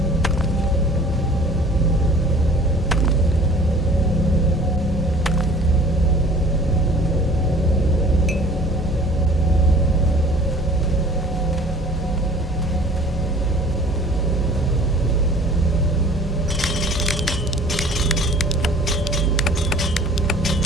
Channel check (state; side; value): normal; both; correlation 0.48